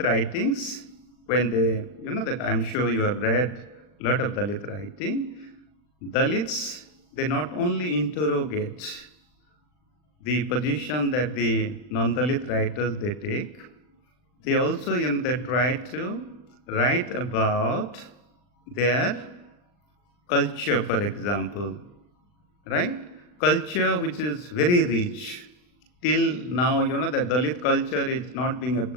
writings, when they, that I'm sure you have read a lot of Dalit writing, Dalits, they not only interrogate the position that the non-Dalit writers they take, they also, they try to write about their culture, for example, right? Culture which is very rich. Till now, that Dalit culture is not being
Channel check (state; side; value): late; right; 39 ms